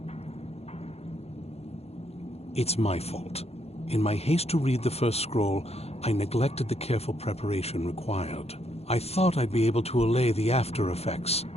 It's my fault. In my haste to read the first scroll, I neglected the careful preparation required. I thought I'd be able to allay the after effects,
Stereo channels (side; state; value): right; late; 0.30 ms